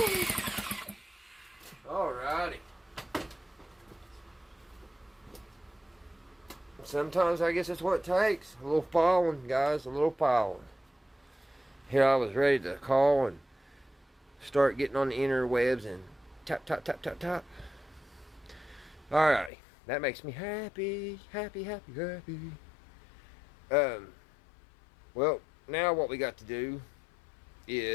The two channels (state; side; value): drops out; right; at 19.5 s